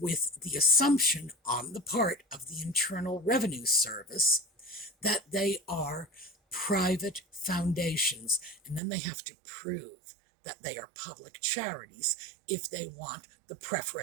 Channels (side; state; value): left; drops out; at 8.8 s